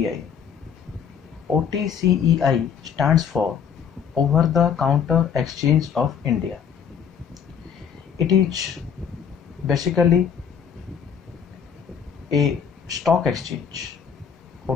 OTCEI stands for over the counter exchange of India. It is basically a stock exchange.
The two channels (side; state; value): right; quieter; 7.5 dB